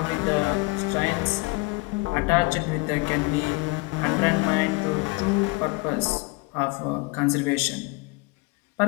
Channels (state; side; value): quieter; right; 26.5 dB